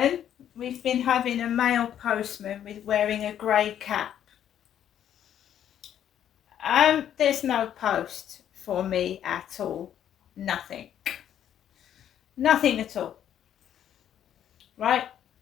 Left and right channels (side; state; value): right; quieter; 10.2 dB